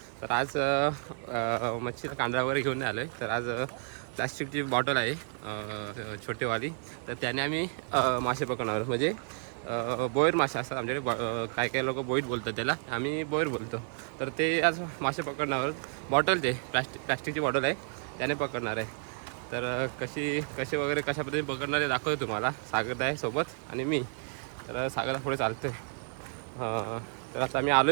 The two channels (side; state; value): left; silent; 57 dB below the other